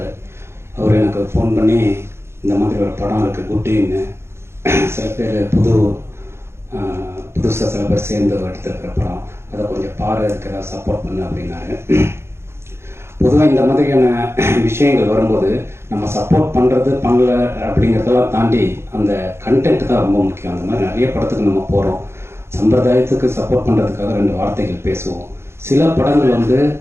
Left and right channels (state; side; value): late; left; 0.12 ms